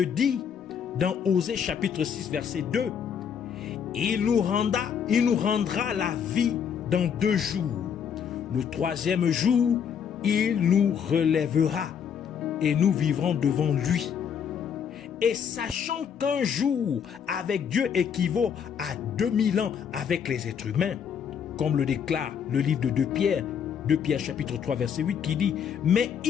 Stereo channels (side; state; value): right; quieter; 7.6 dB